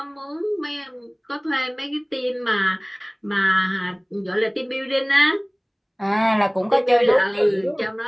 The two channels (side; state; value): both; identical; correlation 1.00